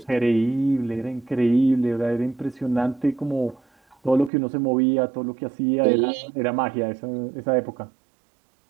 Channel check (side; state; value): left; drops out; at 4.3 s